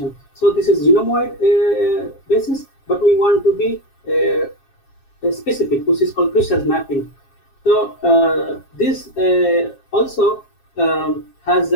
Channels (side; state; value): right; late; 7.4 ms